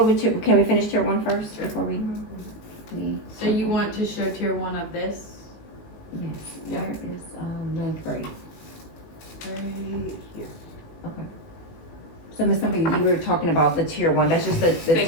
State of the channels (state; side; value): late; right; 18 ms